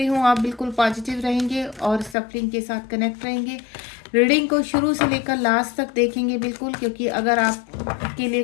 हूँ आप बिल्कुल पॉजिटिव रहेंगे और सफलिंग के साथ कनेक्ट रहेंगे। रीडिंग को शुरू से लेकर लास्ट तक देखेंगे बिल्कुल, क्योंकि अगर आपके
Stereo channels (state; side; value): drops out; right; at 2.1 s